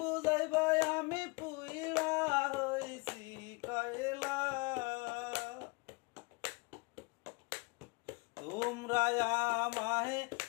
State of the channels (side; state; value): right; quieter; 28.4 dB